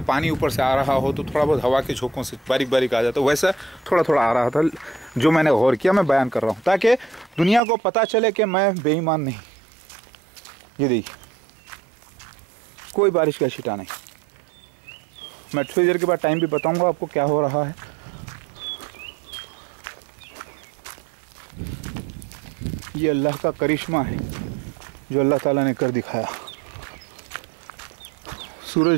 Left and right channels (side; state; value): left; drops out; at 7.6 s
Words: पानी ऊपर से आ रहा हो तो थोड़ा बहुत हवा के झोंकों से बारीक बारीक आ जाता, वैसा थोड़ा थोड़ा आ रहा था। जो मैंने गौर किया, मैं बयान कर रहा हूँ ताकि दुनिया को पता चले कि मैं बेईमान नहीं। ये देखिए, कोई बारिश का छींटा नहीं। मैं थोड़ी देर के बाद टाइम भी बताऊंगा आपको क्या हो रहा है। ये अल्लाह का करिश्मा है जो अल्लाह ताला ने कर दिखाया।